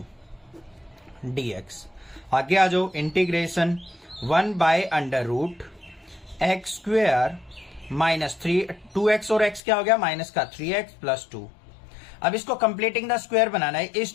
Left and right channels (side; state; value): right; drops out; at 9.6 s